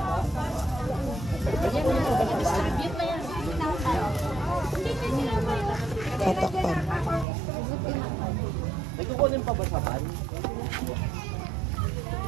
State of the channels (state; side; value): drops out; left; at 7.2 s